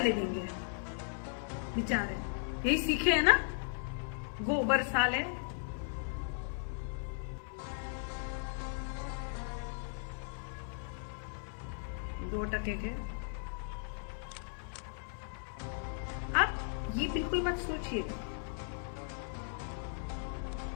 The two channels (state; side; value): silent; right; digital silence